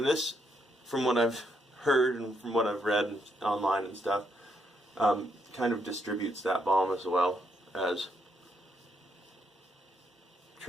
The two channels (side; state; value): both; normal; correlation 0.76